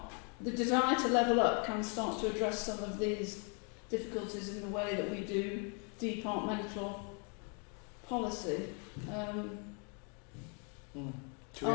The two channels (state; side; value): quieter; right; 37.4 dB